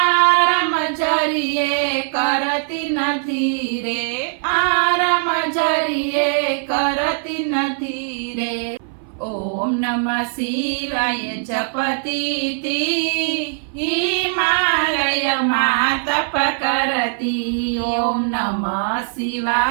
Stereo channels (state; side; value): silent; left; 58 dB below the other